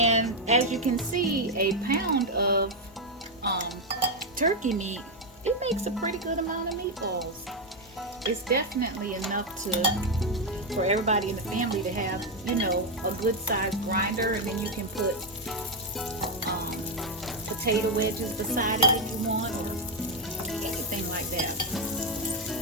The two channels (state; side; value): normal; both; correlation 0.04